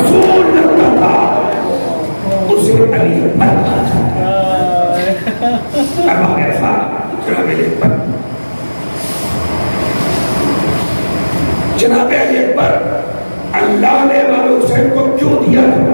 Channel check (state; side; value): inverted; both; correlation -1.00